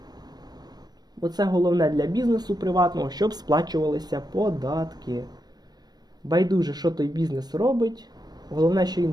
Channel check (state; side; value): late; left; 0.19 ms